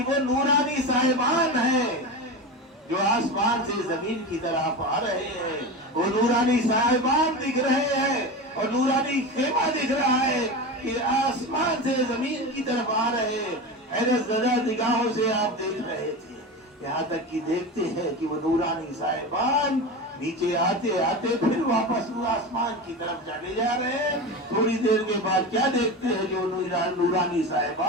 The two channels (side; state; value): both; normal; correlation 0.24